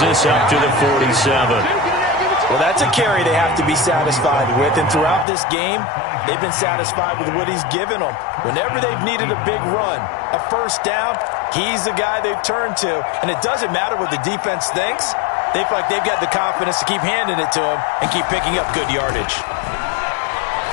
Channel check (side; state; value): right; drops out; at 5.2 s